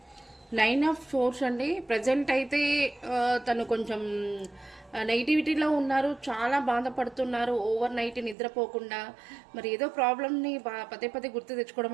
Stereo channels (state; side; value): drops out; left; at 8.3 s